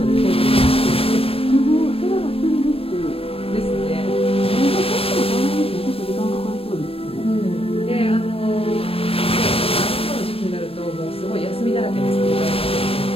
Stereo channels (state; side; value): late; right; 0.27 ms